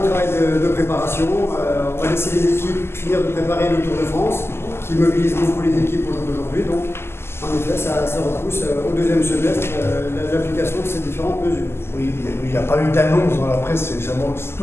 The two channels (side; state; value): right; late; 0.12 ms